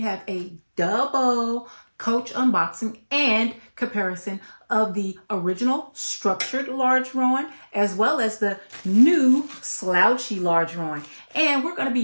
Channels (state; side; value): inverted; both; correlation -1.00